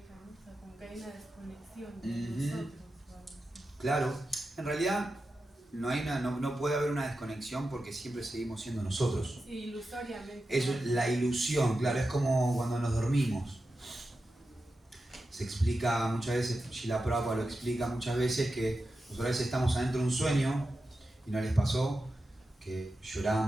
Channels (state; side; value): normal; both; correlation 0.91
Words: ¿no? O sea, como que hay una desconexión de nosotros o algo así. Claro, en realidad no puede haber una desconexión porque siempre seguimos siendo nosotros. Sí, ilusoriamente. Es la ilusión, claro, es como cuando nos dormimos. Se explica muchas veces, Srila Prabhupada lo explica muchas veces, que nosotros a veces estamos adentro de un sueño y no les pasó que